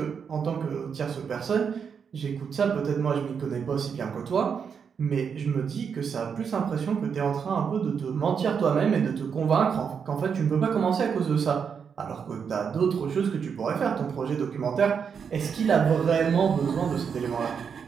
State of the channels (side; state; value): left; quieter; 6.7 dB